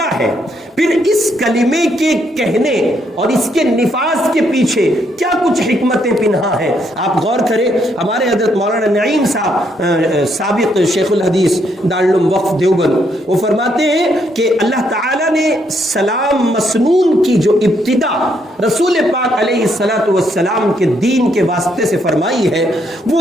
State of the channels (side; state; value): both; normal; correlation 0.74